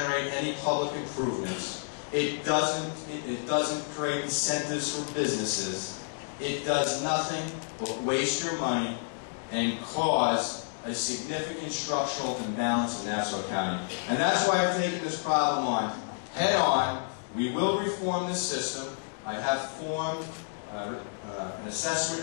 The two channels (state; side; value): silent; right; digital silence